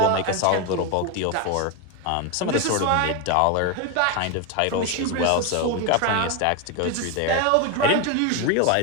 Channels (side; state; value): both; different; correlation 0.02